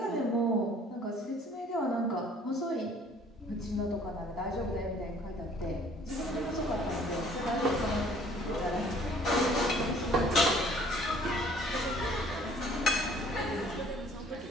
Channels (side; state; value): both; normal; correlation 0.56